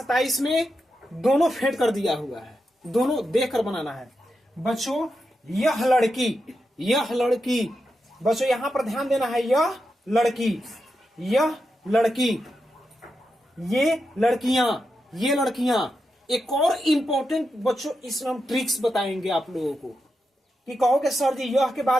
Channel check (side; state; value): both; normal; correlation 0.87